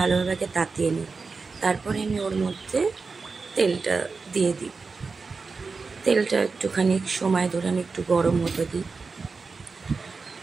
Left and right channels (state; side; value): quieter; left; 4.5 dB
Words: তাতিয়ে নিই। তারপরে আমি ওর মধ্যে তেলটা দিয়ে দিই। তেলটা একটুখানি সময় ধরে আমি একটু গরম হতে দিই।